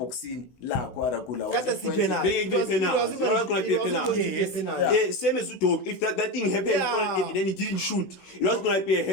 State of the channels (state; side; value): late; right; 16 ms